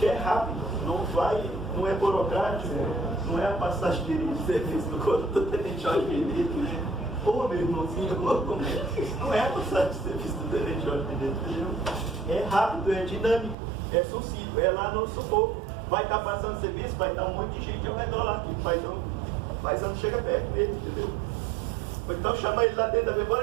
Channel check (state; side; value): drops out; left; at 13.6 s